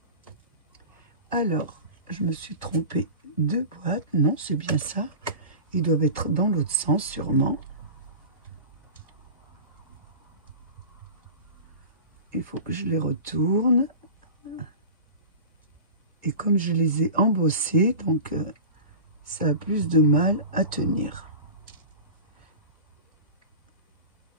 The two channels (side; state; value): both; inverted; correlation -0.33